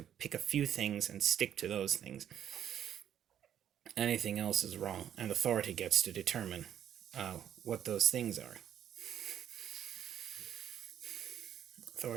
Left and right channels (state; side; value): quieter; left; 10.0 dB